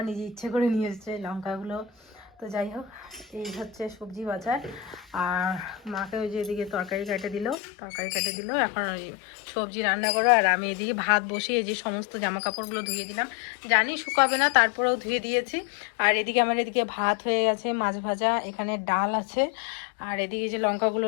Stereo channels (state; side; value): drops out; right; at 7.6 s